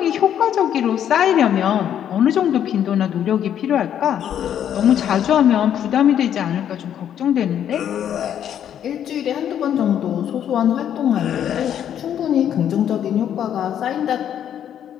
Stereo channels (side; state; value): right; quieter; 9.8 dB